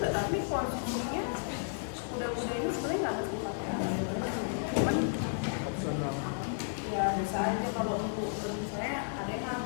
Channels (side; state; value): right; silent; digital silence